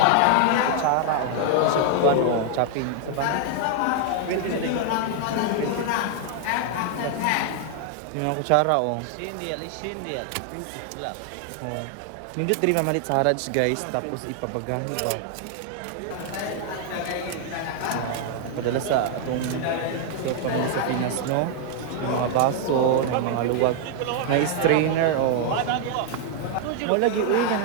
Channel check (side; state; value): both; different; correlation 0.00